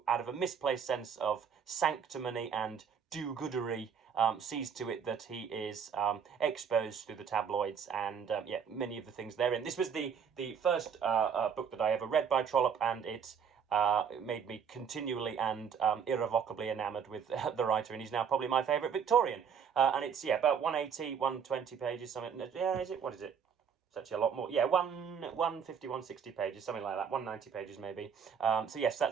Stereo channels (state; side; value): quieter; left; 7.0 dB